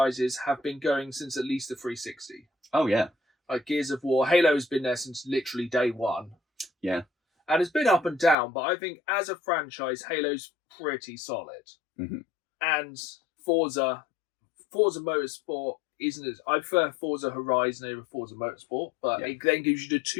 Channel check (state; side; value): drops out; right; at 8.3 s